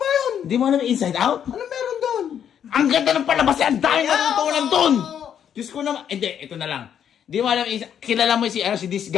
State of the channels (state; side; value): quieter; right; 8.9 dB